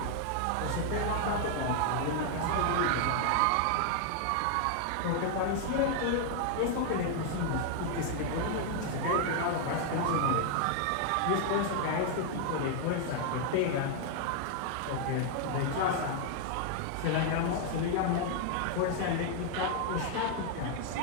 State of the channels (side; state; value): both; different; correlation 0.00